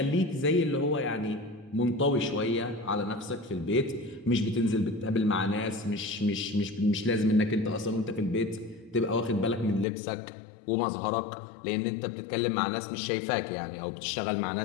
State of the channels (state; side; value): drops out; right; at 9.9 s